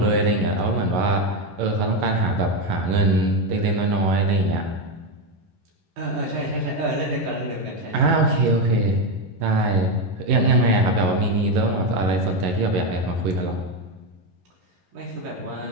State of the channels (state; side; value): late; left; 11 ms